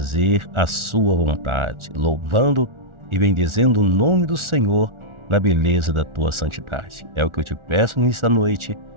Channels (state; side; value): late; left; 1.4 ms